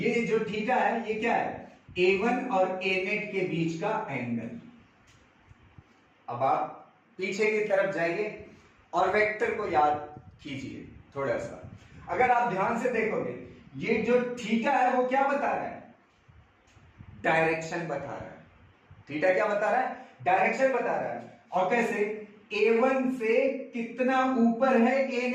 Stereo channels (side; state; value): both; identical; correlation 1.00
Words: जो थीटा है ये क्या है? a1 और a नेट के बीच का एंगल। अब आप पीछे की तरफ जाइए और वेक्टर को याद कीजिए थोड़ा सा। अगर आप ध्यान से देखोगे ये जो थीटा है वो क्या बता रहा है? डायरेक्शन बता रहा है। थीटा क्या बता रहा है? डायरेक्शन बता रहा है। और कैसे? a1 से कितना ऊपर है a